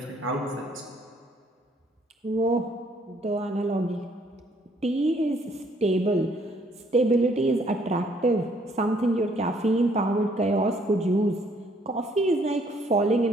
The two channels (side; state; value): both; normal; correlation 0.65